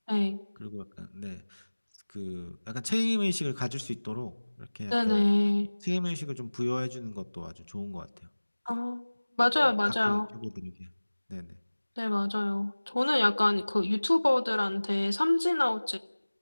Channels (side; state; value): both; inverted; correlation -1.00